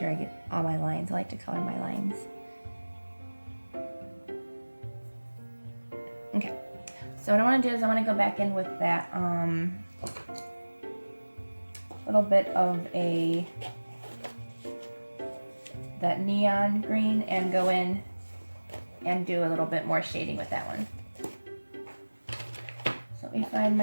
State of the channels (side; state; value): both; inverted; correlation -1.00